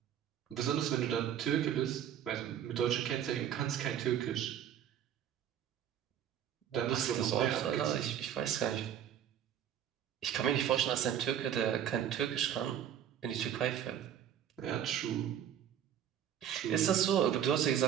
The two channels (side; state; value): left; quieter; 9.8 dB